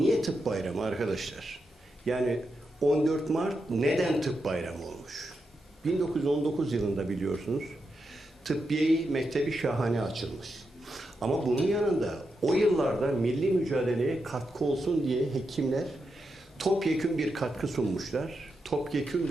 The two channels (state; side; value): normal; both; correlation 0.86